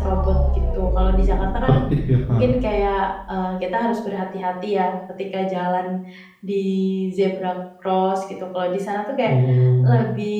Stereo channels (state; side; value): identical; both; correlation 1.00